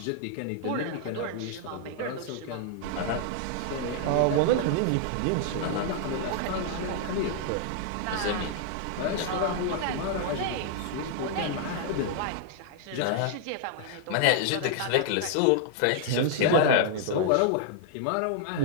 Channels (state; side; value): different; both; correlation 0.00